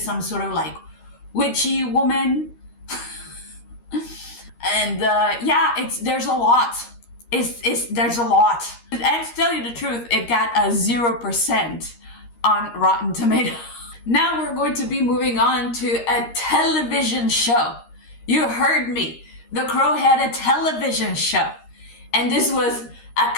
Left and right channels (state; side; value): late; right; 13 ms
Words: some sort of like witchy woman. And there's a lot. There's a lot. And to tell you the truth, it got a 0% on Rotten Tomatoes. Now we're going to be moving on to a television show. You heard me. The Crow had a television show. And this was a